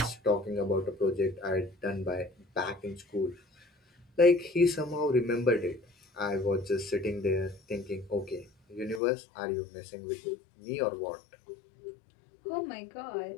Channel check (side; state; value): right; drops out; at 9.0 s